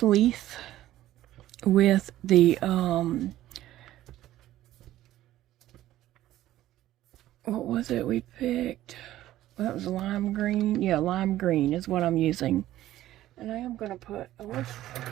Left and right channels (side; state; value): left; quieter; 14.2 dB